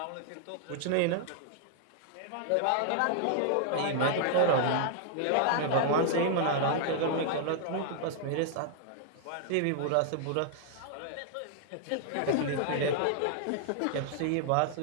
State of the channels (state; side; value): different; both; correlation -0.01